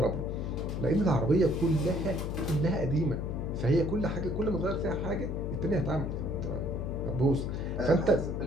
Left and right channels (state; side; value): noise; left; hum, 3 dB below the sound